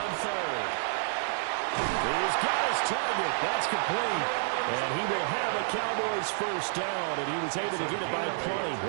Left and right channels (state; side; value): silent; left; digital silence